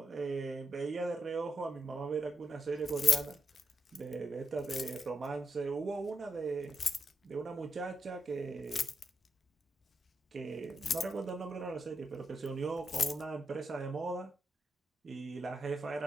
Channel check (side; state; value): both; normal; correlation 0.82